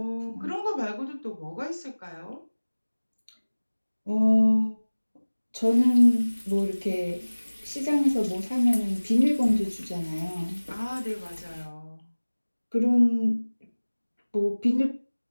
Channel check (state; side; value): inverted; both; correlation -1.00